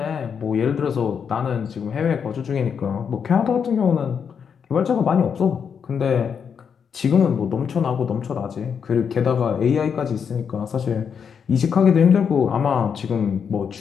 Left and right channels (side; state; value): right; quieter; 7.0 dB